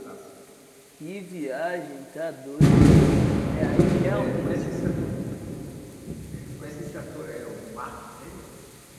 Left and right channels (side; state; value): both; identical; correlation 1.00